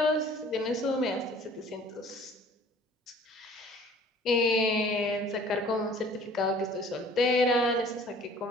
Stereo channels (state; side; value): normal; both; correlation 0.50